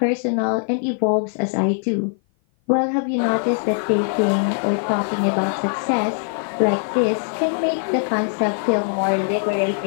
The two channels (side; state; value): right; silent; 55 dB below the other